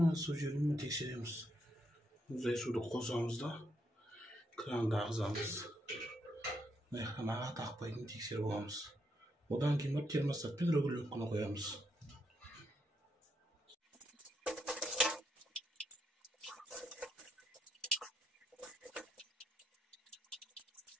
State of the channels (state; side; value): normal; both; correlation 0.78